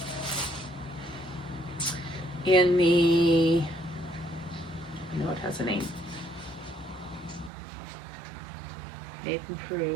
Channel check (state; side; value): drops out; left; at 7.5 s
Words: in the, I know it has a name, Nathan